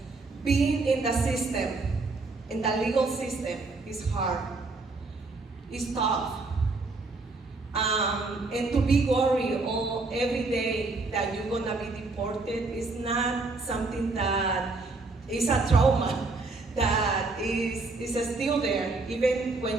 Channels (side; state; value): left; quieter; 3.6 dB